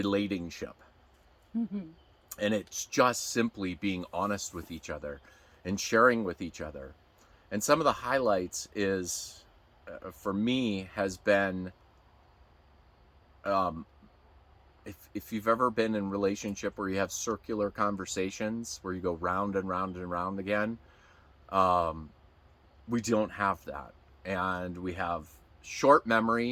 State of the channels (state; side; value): identical; both; correlation 1.00